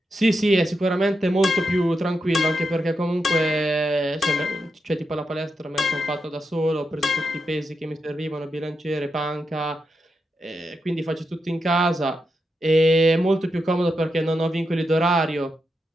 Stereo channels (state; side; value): normal; both; correlation 0.86